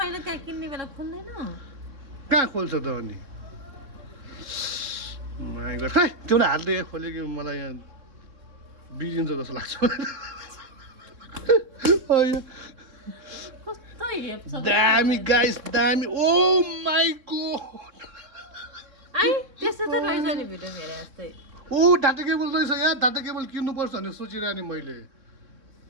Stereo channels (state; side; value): late; left; 3.6 ms